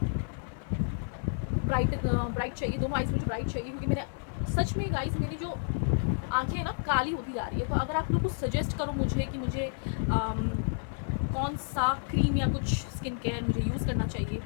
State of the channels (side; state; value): right; silent; 57 dB below the other